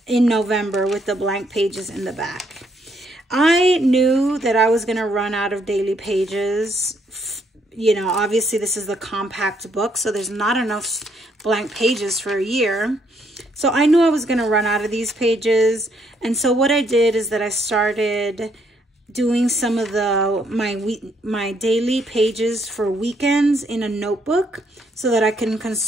in November with the blank pages in the back. I knew that I was going to run out of daily pages. You know, obviously this is the compact book, so there's not enough blank pages for a year. So I knew I was going to run out of these pages. And so what I did is that I started doing some of my daily pages for weekends in a notebook so that I can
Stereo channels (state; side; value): normal; both; correlation 0.71